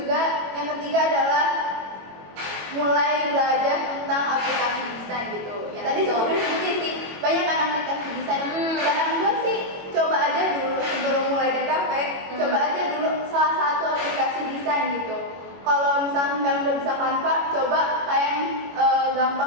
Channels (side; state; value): left; late; 21 ms